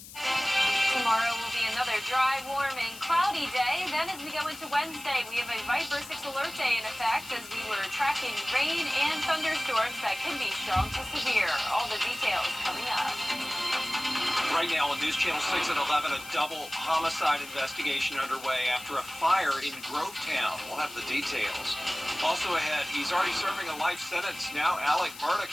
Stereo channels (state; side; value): noise; left; hiss, 15 dB below the sound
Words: Tomorrow will be another dry, warm, and cloudy day. Then as we go into Wednesday, we have a Viper 6 alert day in effect as we were tracking rain and thunderstorms that can be strong to severe. All the details coming up. Right now on News Channel 6 at 11, a double homicide investigation underway after a fire in Grovetown. We'll have the details. Also ahead, he's already serving a life sentence. Now Alec Murdoch